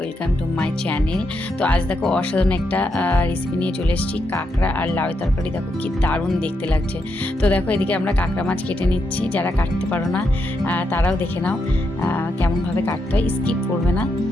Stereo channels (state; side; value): normal; both; correlation 0.82